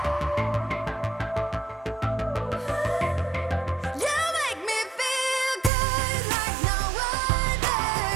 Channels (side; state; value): left; drops out; at 5.7 s